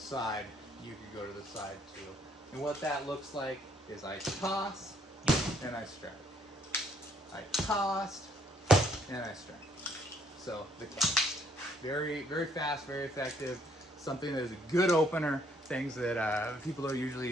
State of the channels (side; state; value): both; normal; correlation 0.66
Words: you could go to the side too. And what that looks like is I toss and I strike. I tossed and I strike. So the cast. Very, very fast, very effective. Something that is a good opener. Things that people don't